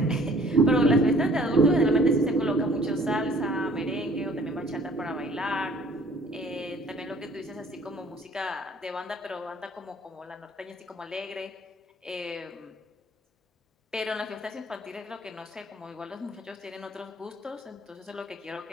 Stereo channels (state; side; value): normal; both; correlation 0.55